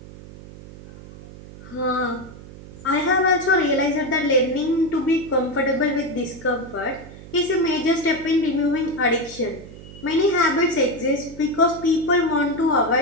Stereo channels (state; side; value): noise; right; hum, 17 dB below the sound